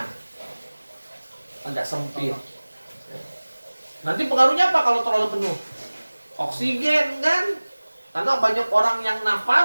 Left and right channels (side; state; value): both; inverted; correlation -1.00